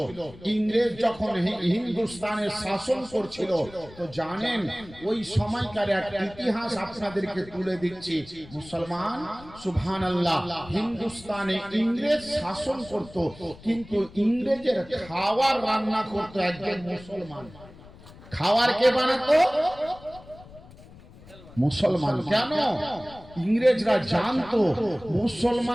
ইংরেজ যখন হিন্দুস্তানের শাসন করছিল, তো জানেন ওই সময়কার এক ইতিহাস আপনাদেরকে তুলে দিচ্ছি। মুসলমান সুবহানাল্লাহ, হিন্দুস্তানে ইংরেজ শাসন করত, কিন্তু ইংরেজের খাবার রান্না করত একজন মুসলমান। খাবার কে বানাতো? মুসলমান। কেন? ইংরেজরা জানতো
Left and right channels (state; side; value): noise; left; rumble, 20 dB below the sound